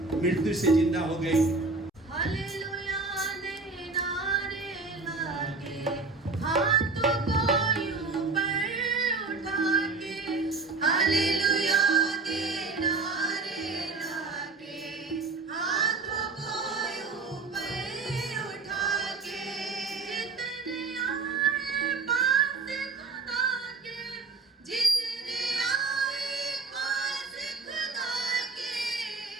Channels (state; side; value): quieter; left; 4.0 dB